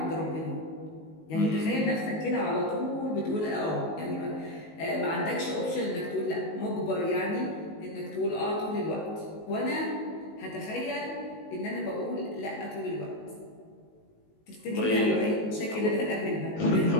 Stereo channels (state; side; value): late; right; 19 ms